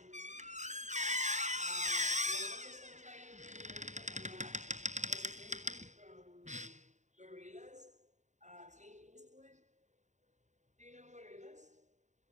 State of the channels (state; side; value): late; left; 0.34 ms